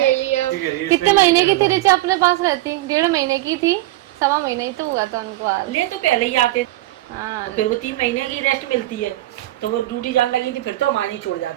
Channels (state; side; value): quieter; left; 17.1 dB